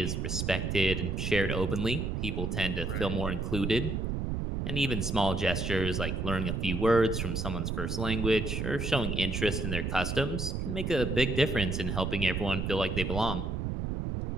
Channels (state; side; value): noise; right; rumble, 1 dB below the sound